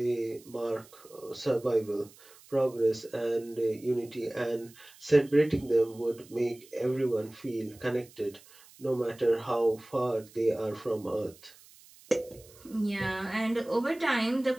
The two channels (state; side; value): noise; right; hiss, 24 dB below the sound